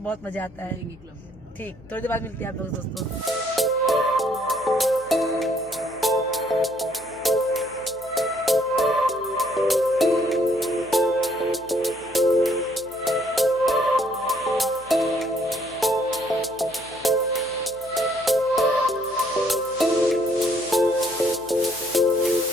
बहुत मजा आता है। ठीक, थोड़ी देर बाद मिलते हैं आप लोग दोस्तों।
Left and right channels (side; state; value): left; noise; hum, 24 dB below the sound